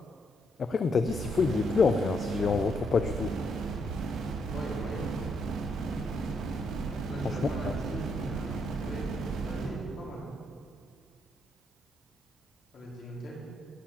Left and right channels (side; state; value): both; normal; correlation 0.76